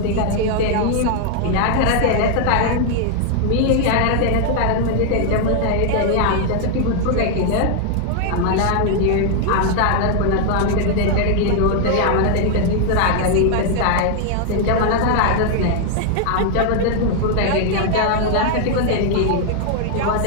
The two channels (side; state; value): both; different; correlation 0.00